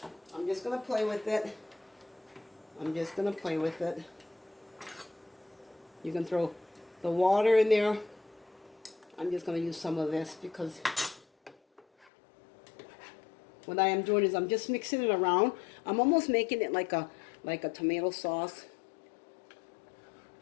I'm just going to play with it. I'm just going to play with it. You can throw the water in there. I'm just going to use some of this because what I am doing is I'm just mixing it around. I'm almost making it like a tomato sauce.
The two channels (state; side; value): drops out; right; at 12.1 s